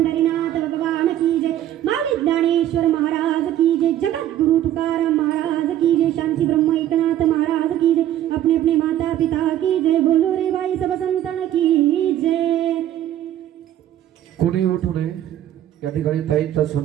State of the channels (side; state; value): left; quieter; 12.0 dB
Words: भगवान की जय. माऊली ज्ञानेश्वर महाराज की जय. जगद्गुरु तुकाराम महाराज की जय. शांती ब्रह्म एकनाथ महाराज की जय. अपने अपने माता पिता की जय. बोलो रे बाई सब संतन की जय. कोणी उठू नये. या ठिकाणी ताईंचा